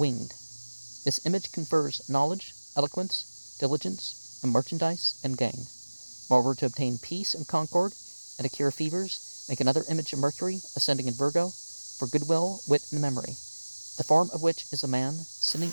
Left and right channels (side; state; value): both; inverted; correlation -1.00